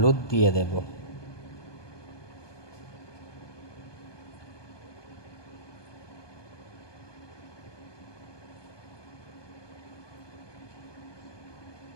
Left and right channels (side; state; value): right; late; 1.2 ms